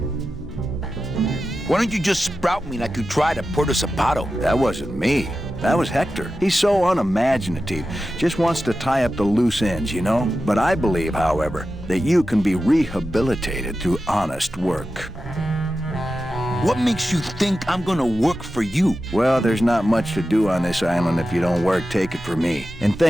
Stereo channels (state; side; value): normal; both; correlation 0.92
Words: Why don't you just sprout me like you tried at Puerto Zapato? That wasn't me. That was Hector. He's so unimaginative. Just wants to tie up the loose ends, you know? But I believe, however, that you can be rehabilitated through honest work. What makes you think I'm gonna work for you? Well, there's not much to do on this island if you don't work, take it from me. And